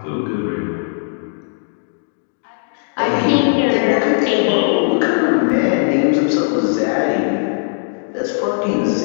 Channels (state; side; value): silent; right; digital silence